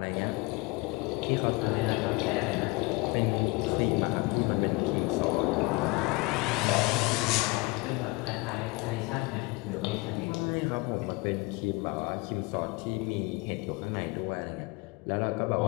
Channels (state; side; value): quieter; right; 25.2 dB